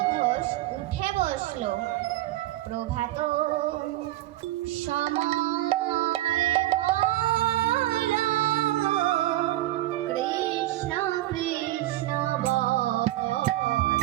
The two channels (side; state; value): left; quieter; 15.9 dB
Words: ঘোষ উঠে বসলো। প্রভাত সময় হলো, কৃষ্ণ কৃষ্ণ বল।